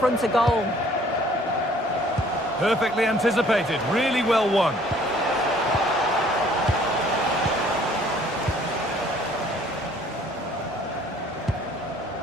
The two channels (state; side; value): normal; both; correlation 0.57